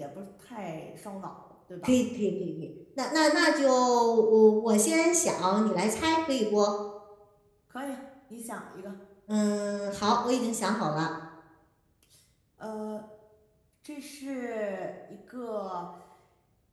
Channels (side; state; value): both; identical; correlation 1.00